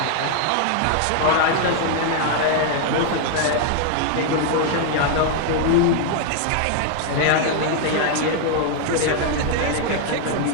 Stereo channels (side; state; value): both; different; correlation 0.00